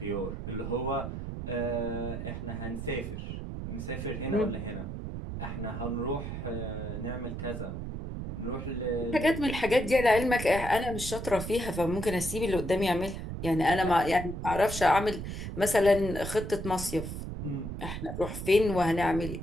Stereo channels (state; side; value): noise; right; rumble, 6 dB below the sound